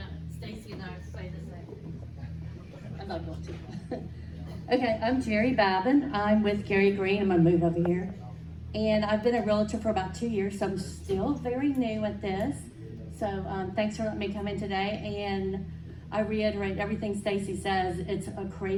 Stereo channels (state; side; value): identical; both; correlation 1.00